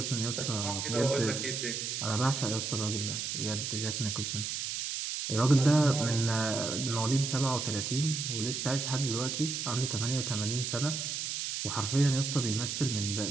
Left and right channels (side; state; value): right; noise; hiss, 3 dB below the sound